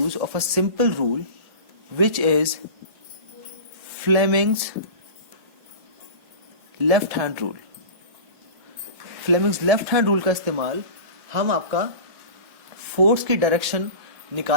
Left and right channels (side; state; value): left; late; 1.8 ms